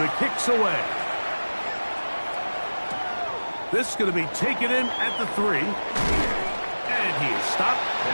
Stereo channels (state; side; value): inverted; both; correlation -1.00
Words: kick's away. This is going to be taken in at the 3. And he is stopped